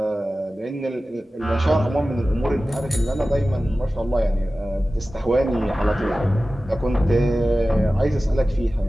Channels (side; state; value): both; normal; correlation 0.96